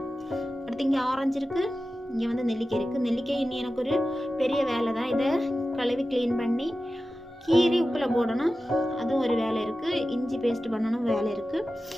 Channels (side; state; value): both; normal; correlation 0.94